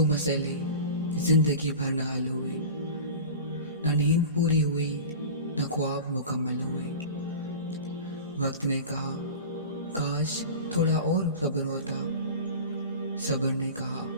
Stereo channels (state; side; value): inverted; both; correlation -0.34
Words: मसले जिंदगी भर न हल हुए, न नींद पूरी हुई, न ख्वाब मुकम्मल हुए। वक्त ने कहा काश थोड़ा और सब्र होता, सब्र ने कहा